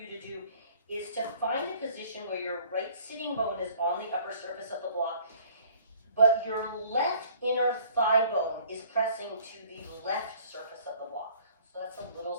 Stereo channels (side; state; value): both; inverted; correlation -0.55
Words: to do is to find a position where your right sitting bone is on the upper surface of the block, but your left inner thigh bone is pressing to the left surface of the block. So that's a little